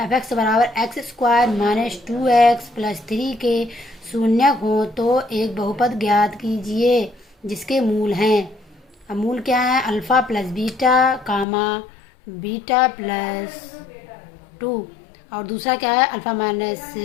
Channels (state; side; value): drops out; right; at 11.5 s